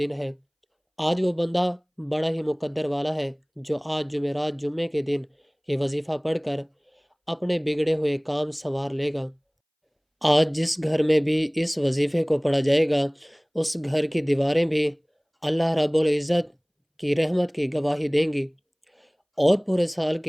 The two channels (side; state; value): both; identical; correlation 1.00